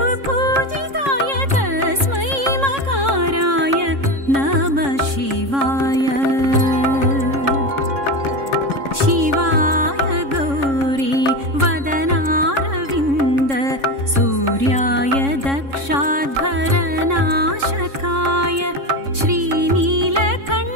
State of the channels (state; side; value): late; left; 3.6 ms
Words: तस्मै मकाराय नमः शिवाय। शिवाय गौरी वदनारविन्द सूर्याय दक्षाध्वरनाशकाय